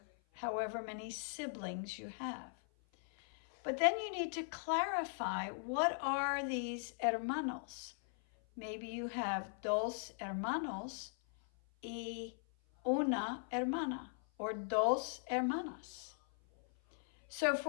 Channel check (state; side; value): silent; right; 51 dB below the other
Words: however many siblings you have. But then you need to clarify, what are these hermanos? Maybe you have dos hermanos y una hermana, or dos hermanas. So